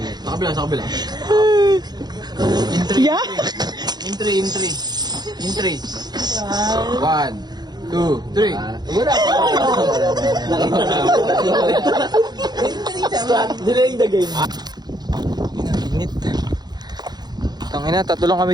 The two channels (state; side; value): late; left; 0.20 ms